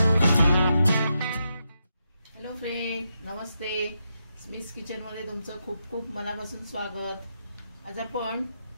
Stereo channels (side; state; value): both; inverted; correlation -0.84